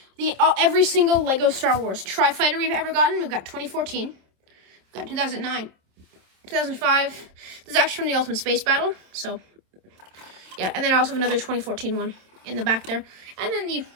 Every single Lego Star Wars Tri-Fighter we've ever gotten, we've got 2014, we've got 2009, 2005. This is actually from the Ultimate Space Battle, so yeah. And then I also have another 2014 one in the back there, and then the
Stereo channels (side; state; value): left; late; 27 ms